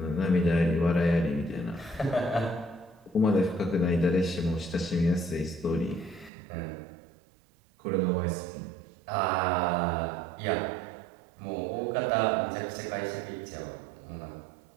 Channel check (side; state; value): left; drops out; at 6.3 s